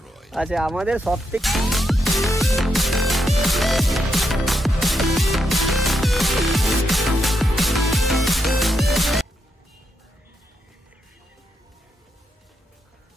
আচ্ছা আমাদের সব থেকে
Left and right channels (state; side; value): normal; both; correlation 0.81